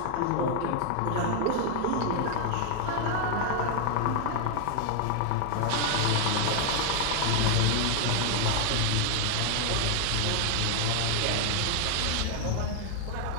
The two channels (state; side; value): different; both; correlation 0.00